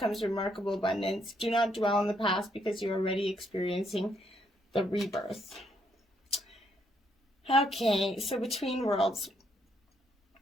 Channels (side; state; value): both; normal; correlation 0.73